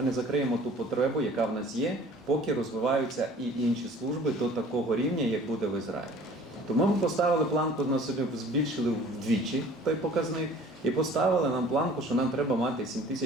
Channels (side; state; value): both; normal; correlation 0.49